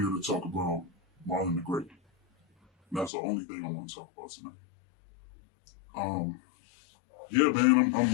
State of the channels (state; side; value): drops out; right; at 3.1 s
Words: to talk about Marlon the Great. And that's the only thing I want to talk about tonight. Yeah,